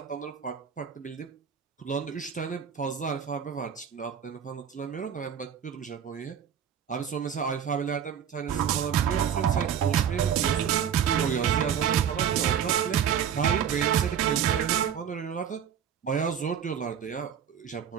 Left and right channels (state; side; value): quieter; left; 8.4 dB